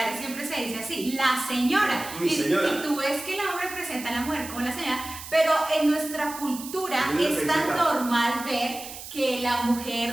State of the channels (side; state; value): right; noise; hiss, 12 dB below the sound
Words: siempre se dice así, la señora. Mi señora. Y tú ves que el hombre presenta a la mujer como la señora, pero en nuestra cultura es tan normal ver que la